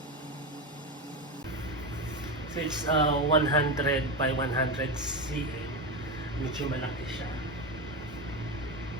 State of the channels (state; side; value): normal; both; correlation 0.16